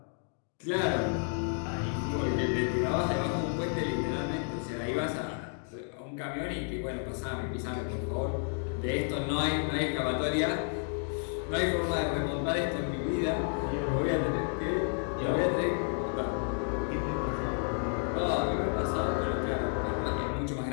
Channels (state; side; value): silent; right; 57 dB below the other